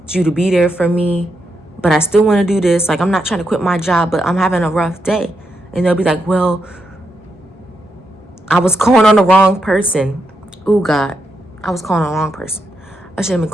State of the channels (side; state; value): both; normal; correlation 0.83